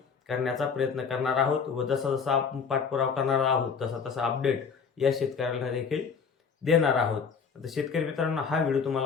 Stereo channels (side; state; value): right; quieter; 6.0 dB